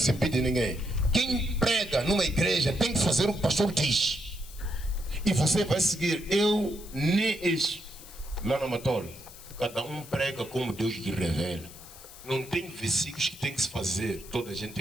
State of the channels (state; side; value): noise; left; hiss, 17 dB below the sound